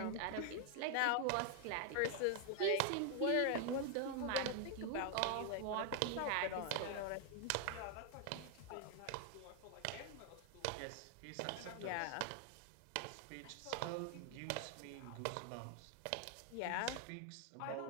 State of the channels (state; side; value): different; both; correlation 0.01